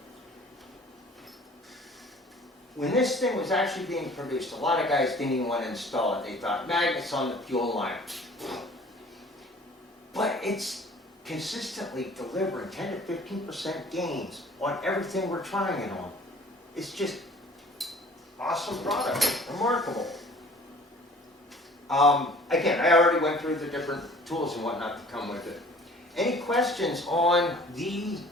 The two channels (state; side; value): normal; both; correlation 0.50